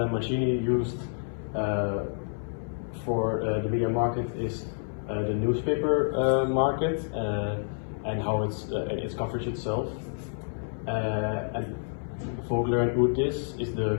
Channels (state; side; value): silent; right; 59 dB below the other